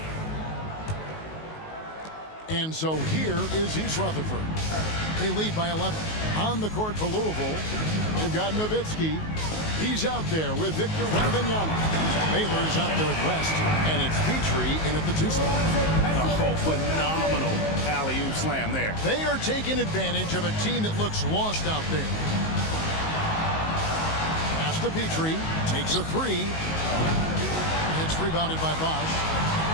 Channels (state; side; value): late; right; 19 ms